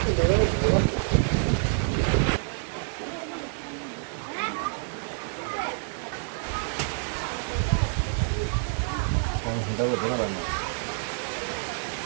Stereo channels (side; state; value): left; silent; digital silence